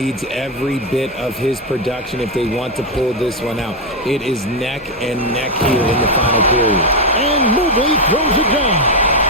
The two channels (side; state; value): both; normal; correlation 0.05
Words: every bit of his production if they want to pull this one out. It is neck and neck here in the final period. And Mobley throws it down.